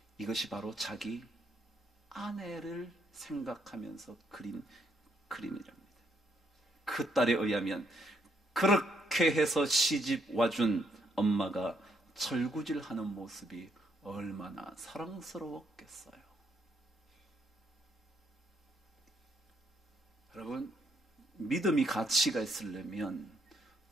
이것이 바로 자기 아내를 생각하면서 그린 그림이랍니다. 그 딸에 의하면 그렇게 해서 시집 와준 엄마가 절구질하는 모습이 얼마나 사랑스러웠겠어요. 여러분, 믿음이 가치가 있으려면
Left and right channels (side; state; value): both; normal; correlation 0.73